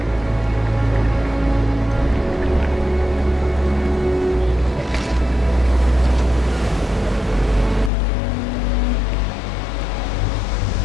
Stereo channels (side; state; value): right; drops out; at 7.9 s